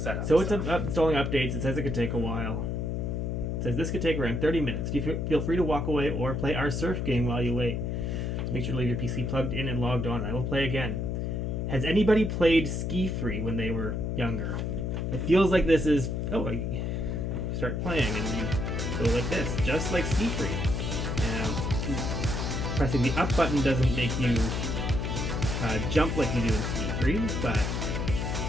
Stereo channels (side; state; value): left; noise; hum, 1 dB below the sound